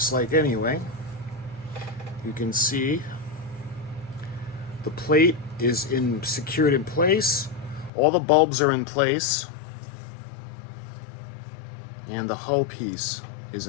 like anyway. You can see the plate is secured in place. All the bulbs are in place. And the hull piece is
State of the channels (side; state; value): right; drops out; at 7.9 s